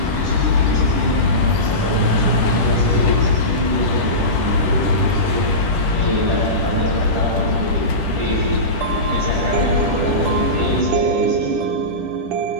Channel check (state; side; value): late; left; 10 ms